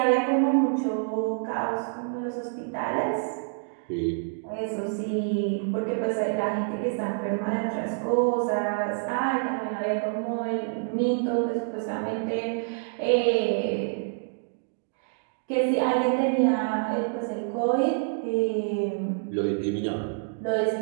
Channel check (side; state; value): left; silent; digital silence